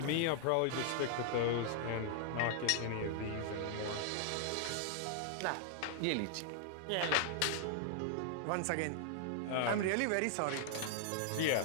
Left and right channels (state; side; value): different; both; correlation -0.01